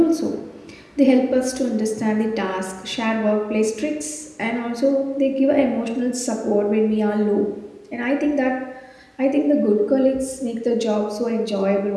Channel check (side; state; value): both; identical; correlation 1.00